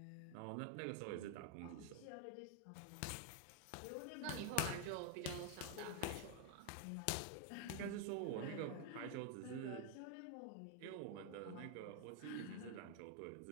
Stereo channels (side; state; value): both; different; correlation 0.00